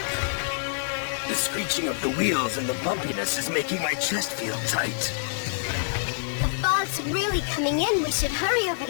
The screeching of the wheels and the bumpiness is making my chest feel tight. The fog's really coming in. We should hurry over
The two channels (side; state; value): right; silent; digital silence